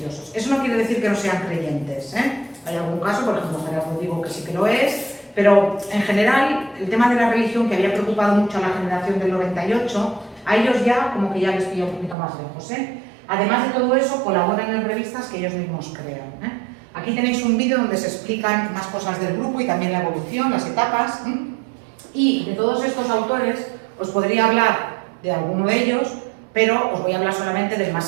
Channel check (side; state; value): left; drops out; at 12.2 s